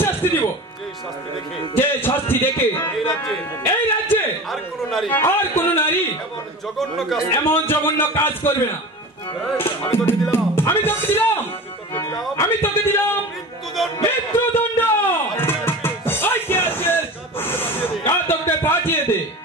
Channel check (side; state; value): both; normal; correlation 0.33